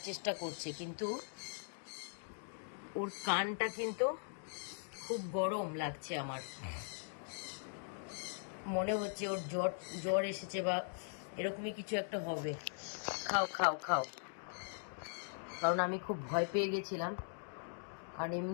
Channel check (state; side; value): silent; right; digital silence